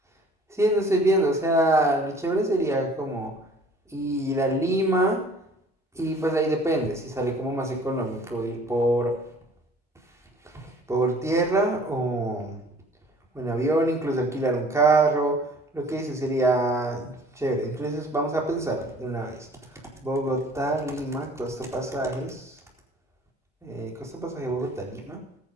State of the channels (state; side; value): normal; both; correlation 0.51